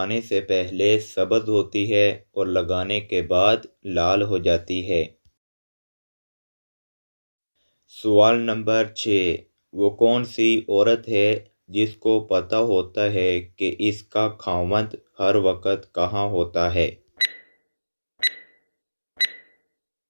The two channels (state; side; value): inverted; both; correlation -1.00